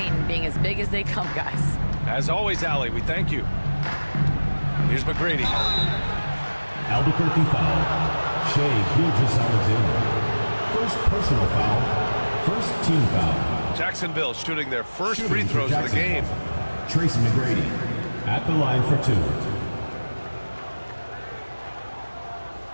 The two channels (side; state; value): both; inverted; correlation -1.00